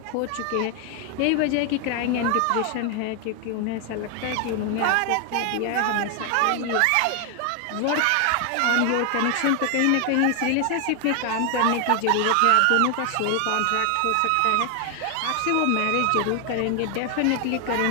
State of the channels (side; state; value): both; different; correlation 0.00